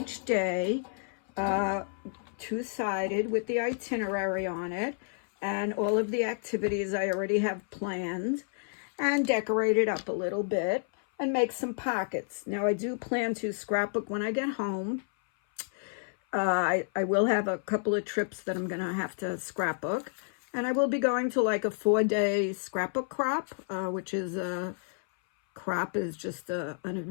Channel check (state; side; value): silent; right; 57 dB below the other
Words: day, two-sided with the itinerary on it, and all of the activities I already have planned, and decorate it up a little bit and make some pockets. Now I do plan to scrapbook when I get home. I will have a couple of trips that I'm going to have to scrapbook. And I will be going to like a 4-day scrapbook crop, which is crop is just an